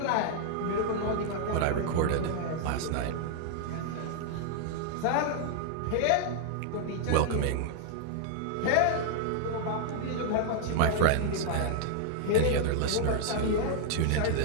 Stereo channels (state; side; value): different; both; correlation -0.01